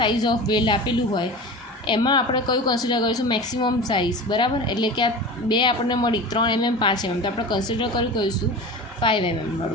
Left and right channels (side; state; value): both; normal; correlation 0.33